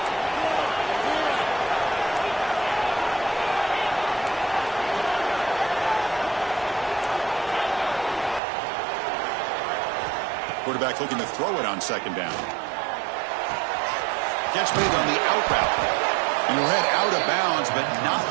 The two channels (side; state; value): left; drops out; at 8.4 s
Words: Quarterback looking to throw it on 2nd down. Catch made on the out route. And he'll head out of bounds, but not